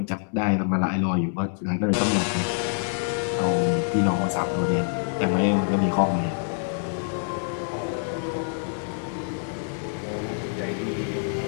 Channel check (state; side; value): silent; right; digital silence